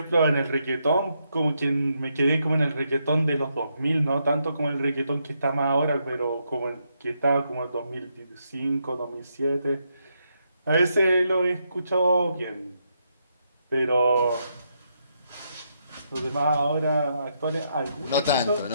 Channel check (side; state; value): both; inverted; correlation -0.79